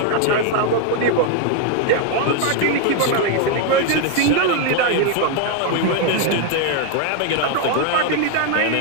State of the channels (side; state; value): both; different; correlation 0.01